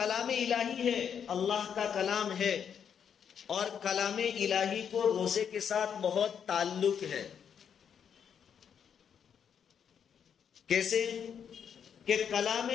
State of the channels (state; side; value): quieter; right; 7.8 dB